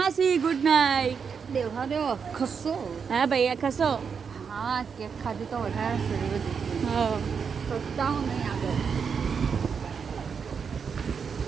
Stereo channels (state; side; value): quieter; left; 6.3 dB